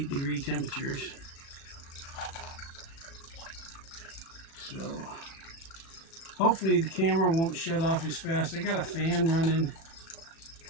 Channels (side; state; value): right; late; 36 ms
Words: degree temperatures. So hopefully the camera won't shut off as fast. I got a fan running,